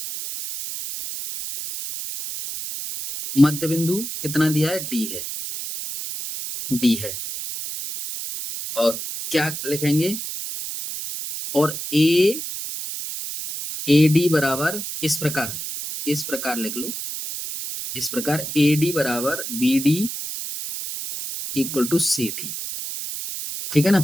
मध्य बिंदु कितना दिया है, डी है और क्या लिखेंगे, और ए डी बराबर इस प्रकार लिख लो, इस प्रकार ए डी बराबर B D equal to C D. ठीक है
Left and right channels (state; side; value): noise; right; hiss, 6 dB below the sound